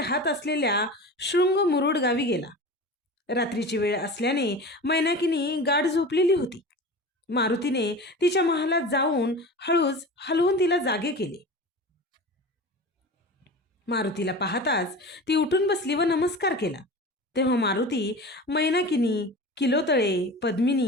असलेल्या शृंग मुरुड गावी गेला। रात्रीची वेळ असल्याने मैनाकीनी गाढ झोपलेली होती। मारुतीने तिच्या महालात जाऊन हळूच हलवून तिला जागे केले। मारुतीला पाहताच ती उठून बसली व नमस्कार केला। तेव्हा मारुती मैनाकिनी, किलोतळे,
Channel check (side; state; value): both; normal; correlation 0.33